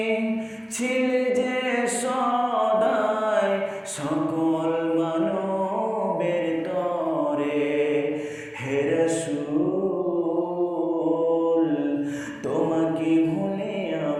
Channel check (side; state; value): both; identical; correlation 1.00